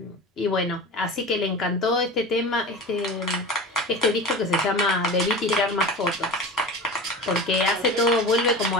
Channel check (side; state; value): both; normal; correlation 0.32